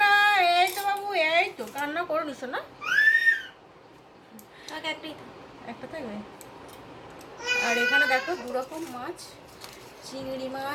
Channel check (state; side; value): identical; both; correlation 1.00